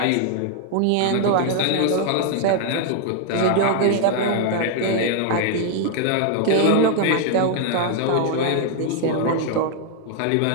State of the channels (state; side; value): different; both; correlation 0.00